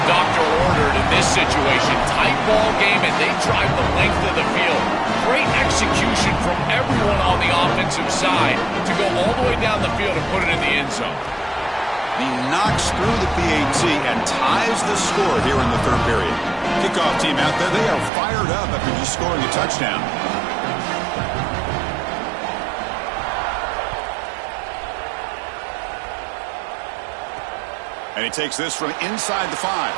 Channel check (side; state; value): left; drops out; at 18.1 s